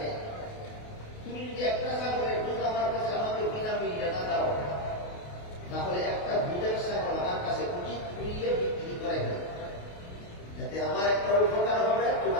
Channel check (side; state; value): right; late; 28 ms